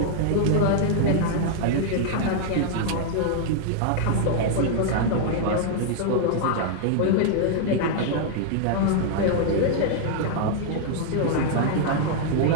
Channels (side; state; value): both; different; correlation -0.01